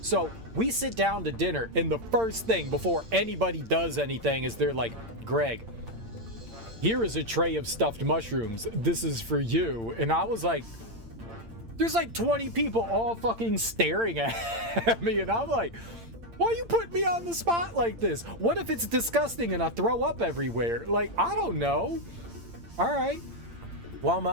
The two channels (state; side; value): late; left; 8.8 ms